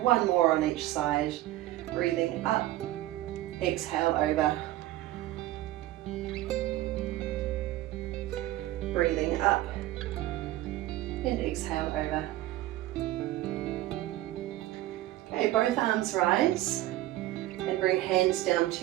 more on each side. Breathing up, exhale over. Breathing up and exhale over. Okay, both arms rise and bring hands down to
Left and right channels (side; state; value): left; quieter; 15.8 dB